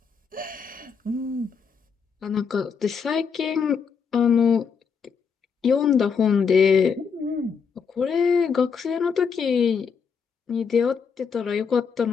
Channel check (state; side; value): quieter; right; 6.1 dB